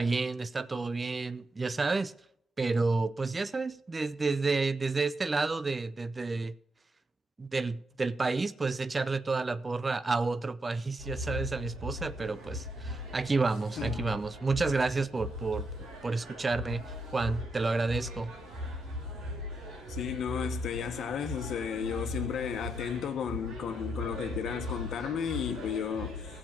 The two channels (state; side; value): normal; both; correlation 0.81